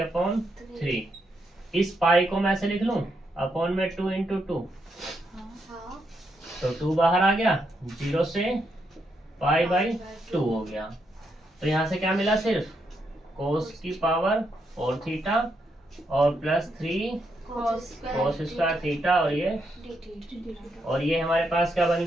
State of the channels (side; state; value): both; normal; correlation 0.80